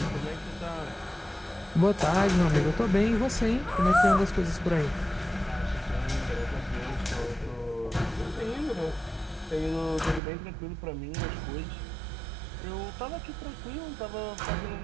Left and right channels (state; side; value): drops out; left; at 10.2 s